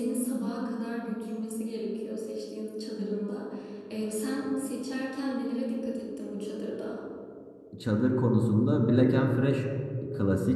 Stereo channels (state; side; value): identical; both; correlation 1.00